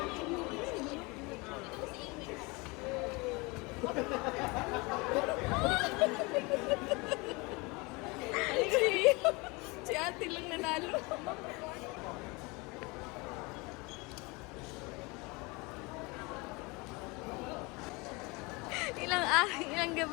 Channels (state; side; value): quieter; right; 26.3 dB